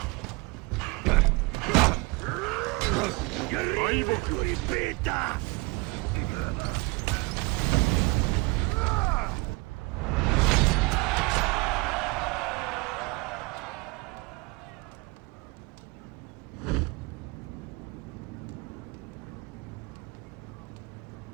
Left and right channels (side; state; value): left; quieter; 25.8 dB